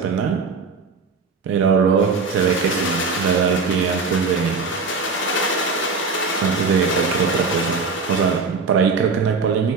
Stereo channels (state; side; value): quieter; left; 4.5 dB